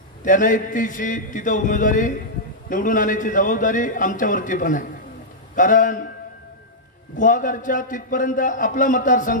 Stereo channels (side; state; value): both; normal; correlation -0.10